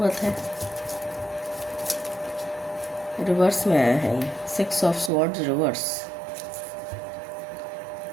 है। रिवर्स में आया है ये 6 ऑफ स्वॉर्ड्स रिवर्स।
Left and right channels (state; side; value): drops out; left; at 5.1 s